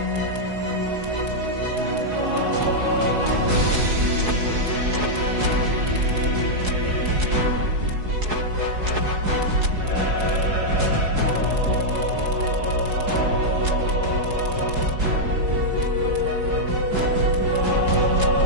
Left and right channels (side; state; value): left; late; 4.7 ms